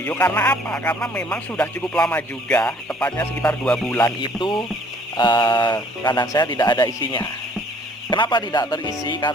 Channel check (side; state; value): both; normal; correlation 0.58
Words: Karena apa? Karena memang sudah cukup lama juga, tepatnya sekitar 2 bulan itu kandang saya tidak ada isinya. Kenapa tidak terisi?